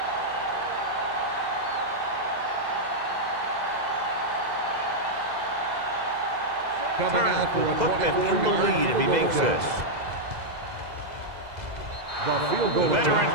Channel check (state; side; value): late; left; 2.0 ms